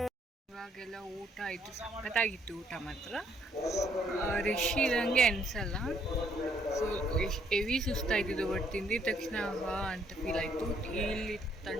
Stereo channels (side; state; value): both; normal; correlation 0.69